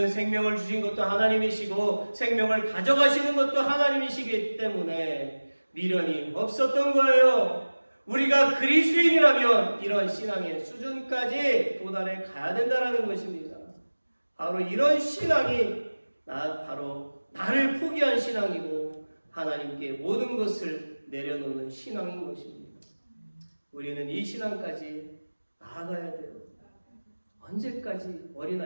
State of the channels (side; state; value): both; inverted; correlation -1.00